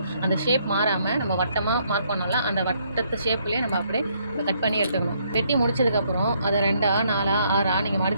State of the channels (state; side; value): inverted; both; correlation -0.70